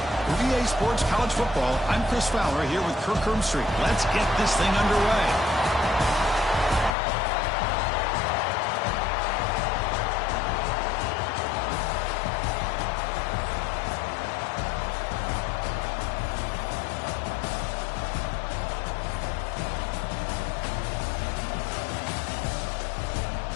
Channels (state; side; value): drops out; right; at 7.0 s